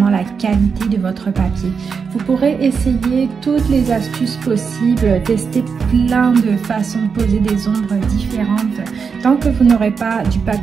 la qualité de votre papier. Vous pourrez essayer toutes les astuces possibles, tester plein de façons de poser des ombres différentes. Tant que vous n'aurez pas du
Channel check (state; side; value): quieter; left; 5.8 dB